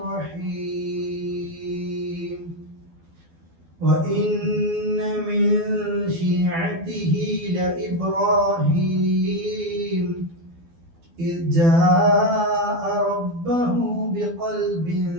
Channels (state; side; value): late; left; 12 ms